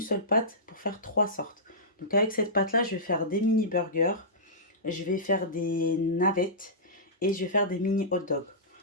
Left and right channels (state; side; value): normal; both; correlation -0.17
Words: seule pâte pour faire 3 sortes. Donc avec cette pâte-là, je vais faire des mini burgers, je vais faire des navettes et je vais faire des mini hot dogs.